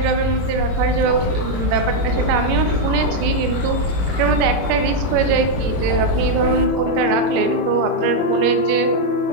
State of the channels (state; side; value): late; left; 21 ms